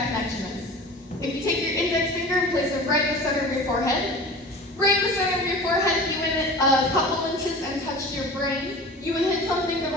connection is. If you take your index finger and place it right in the center of your forehead, right in the center of your forehead, you hit it a couple inches and touch your brain, you would hit something that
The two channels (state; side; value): normal; both; correlation 0.37